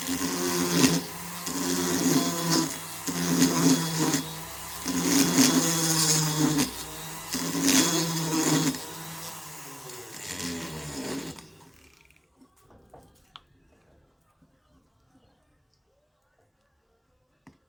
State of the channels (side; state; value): both; identical; correlation 1.00